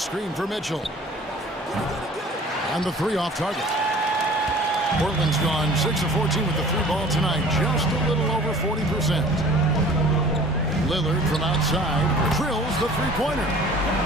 for Mitchell. And the 3 off target. Portland's gone 6 of 14 with the 3 ball tonight. Just a little over 40%. Lillard from outside drills the three-pointer.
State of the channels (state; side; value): normal; both; correlation 0.47